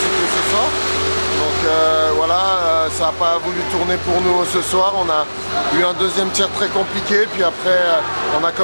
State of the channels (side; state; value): both; inverted; correlation -1.00